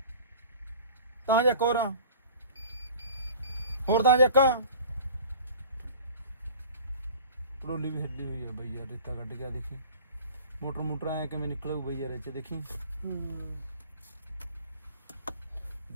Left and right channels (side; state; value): both; inverted; correlation -0.43